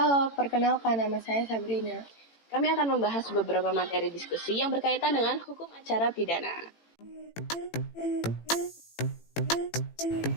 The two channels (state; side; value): late; right; 18 ms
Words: perkenalkan nama saya Sabrina. Kami akan membahas beberapa materi diskusi yang berkaitan dengan hukum acara pidana.